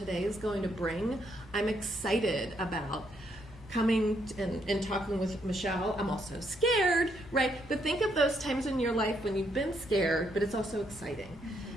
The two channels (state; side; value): normal; both; correlation 0.74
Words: is going to bring. I'm excited about coming and talking with Michelle. I'm also scared, right? But think of those times in your life when you've been scared, but it's also exciting.